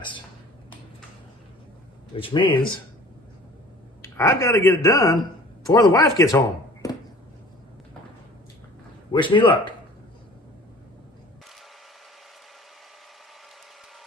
Which means I've got to get it done before the wife gets home. Wish me luck.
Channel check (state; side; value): normal; both; correlation 0.47